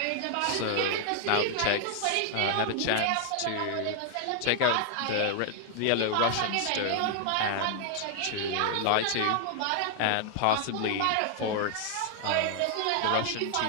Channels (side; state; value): both; different; correlation 0.00